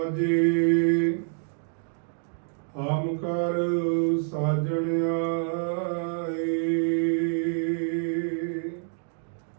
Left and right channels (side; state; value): left; silent; digital silence